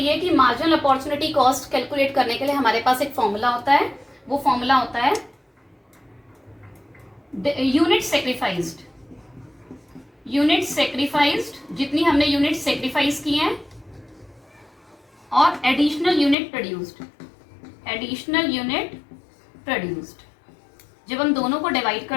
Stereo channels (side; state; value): right; drops out; at 16.4 s